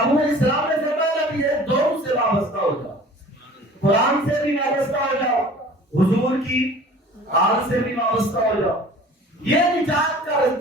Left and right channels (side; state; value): both; normal; correlation 0.46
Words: اسلام نے فرمایا بھی ہے، دونوں سے وابستہ ہو جاؤ، قرآن سے بھی وابستہ ہو جاؤ، حضور کی آل سے بھی وابستہ ہو جاؤ۔ یہ نجات کا